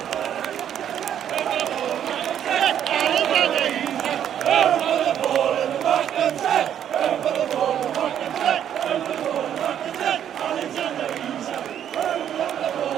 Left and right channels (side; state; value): left; quieter; 9.8 dB